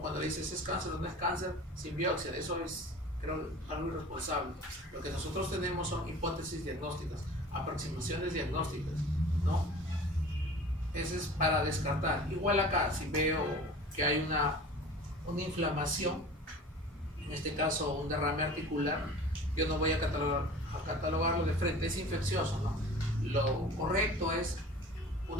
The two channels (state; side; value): normal; both; correlation 0.41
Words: le dices es cáncer o no es cáncer, sin biopsia. Eso es, creo, algo irresponsable. Lo que nosotros tenemos son hipótesis diagnósticas, aproximaciones diagnósticas, ¿no? Eso es para descartar. Igual acá, si veo que hay una inflamación, en este caso un derrame articular, yo no voy a catalogarlo de frente, es infeccioso, ¿no? Lo correcto es